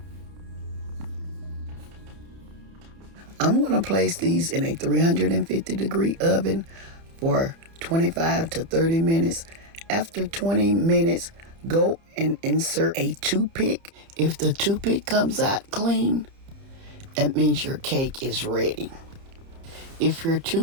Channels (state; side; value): late; left; 30 ms